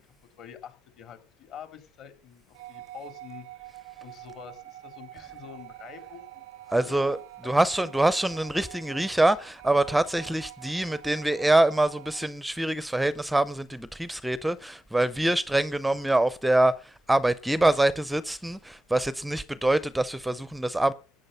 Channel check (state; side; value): normal; both; correlation 0.96